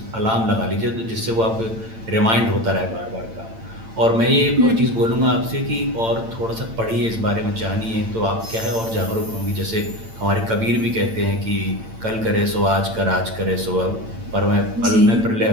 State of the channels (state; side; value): late; left; 8.9 ms